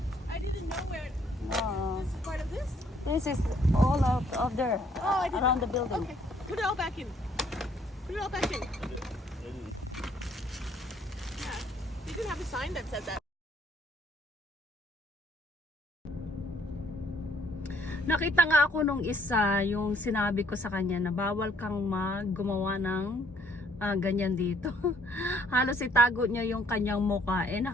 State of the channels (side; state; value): both; normal; correlation 0.64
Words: I didn't know where No, this is part of this. this is all out of there, Oh, I didn't around know. the building. Okay. Put it all back in. Put it all back in. Yeah. You didn't have a sign that said that. Nakita nga ako nung isa, yung sinabi ko sa kanya na bawal kang gumawa ng ganyan dito. Halos itago niya yung kanyang mukha.